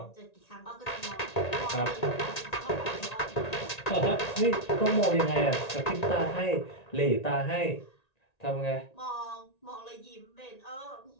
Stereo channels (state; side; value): late; right; 1.9 ms